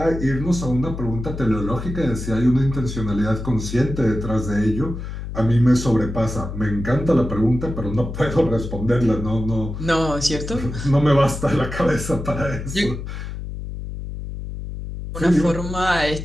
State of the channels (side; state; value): left; noise; hum, 7 dB below the sound